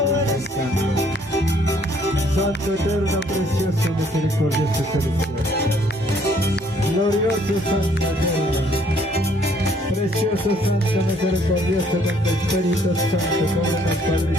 eres tú. Santo, eterno, precioso, misericordioso, celestial. Glorioso, santo, eterno. Precioso, santo, misericordioso, con tu Espíritu Santo, cóbrenos, Padre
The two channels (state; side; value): normal; both; correlation 0.63